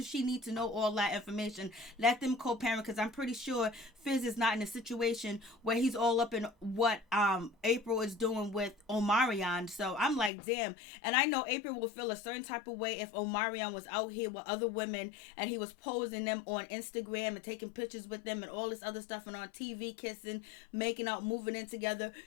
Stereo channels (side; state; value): right; drops out; at 10.3 s